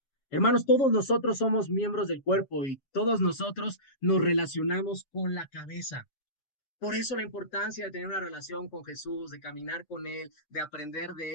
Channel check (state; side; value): late; right; 7.3 ms